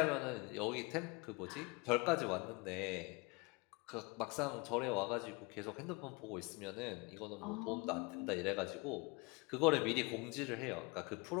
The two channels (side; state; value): right; quieter; 27.6 dB